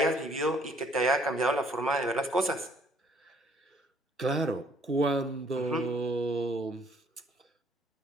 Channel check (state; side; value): normal; both; correlation 0.62